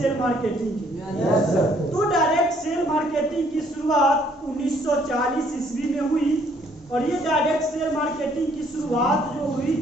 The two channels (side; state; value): both; normal; correlation 0.64